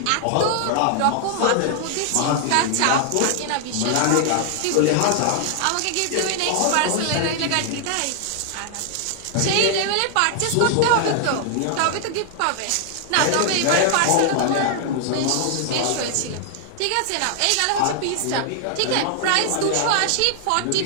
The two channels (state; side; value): different; both; correlation 0.00